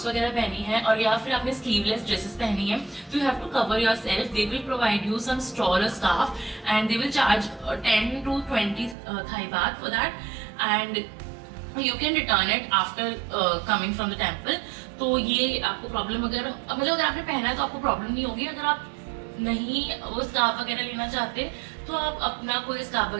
वगैरह पहनी है और या फिर आपने स्लीवलेस ड्रेसेस पहनी है, तो you have to cover yourself. They will provide you some straw और scarf and they will charge 10 to 20 Thai baht for that, and you can return it after coming from the temple. तो ये आपको प्रॉब्लम अगर आपने पहना है तो आपको प्रॉब्लम नहीं होगी। अगर आप नहीं वो स्कार्फ वगैरह लेना चाहते तो आप अपना कोई स्कार्फ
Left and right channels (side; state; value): left; drops out; at 9.0 s